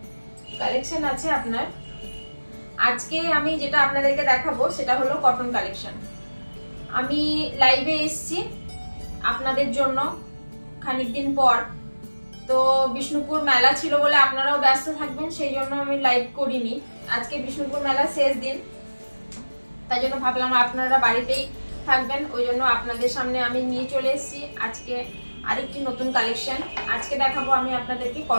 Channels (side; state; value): both; inverted; correlation -1.00